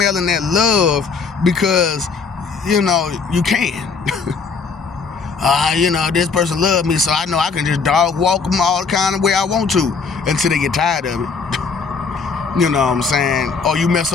that love, because, you can. This person loves me, so I know I can just dog walk them all the kind of way I want to until they get tired of it. You know what I'm saying? Or you mess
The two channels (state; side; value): quieter; right; 5.1 dB